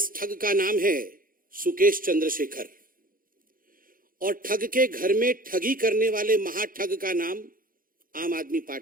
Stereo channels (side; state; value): left; late; 0.41 ms